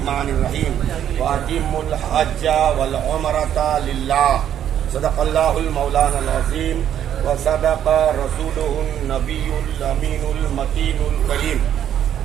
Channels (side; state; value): left; quieter; 10.2 dB